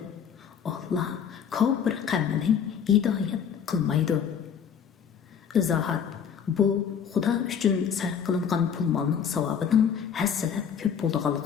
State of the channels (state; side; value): quieter; right; 7.6 dB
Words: Alloh kofir qavmini hidoyat qilmaydi. Izohat: bu Xudo uchun sarf qilingan pul molning savobining hassalab ko'p